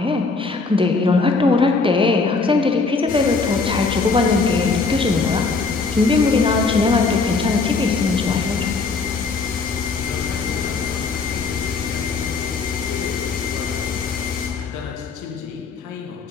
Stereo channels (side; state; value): right; quieter; 4.2 dB